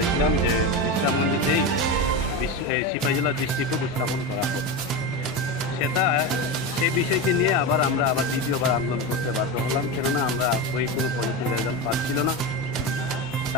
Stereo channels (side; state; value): both; normal; correlation 0.18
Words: যে বিশ্রামগঞ্জেতেই সিপাহীজলা ডিস্ট্রিক্ট উপস্থাপন করা হোক। সেই বিষয়কে নিয়ে আমরা দ্বিতীয়বার আন্দোলন করতে বাধ্য হলাম, কেননা আমরা ওই কোনো পজিটিভ রেজাল্ট পাচ্ছিল না।